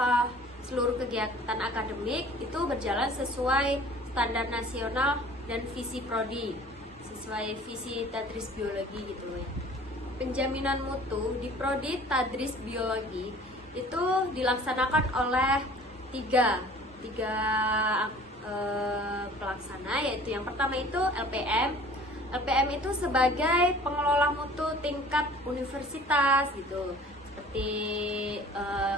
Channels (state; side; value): normal; both; correlation 0.48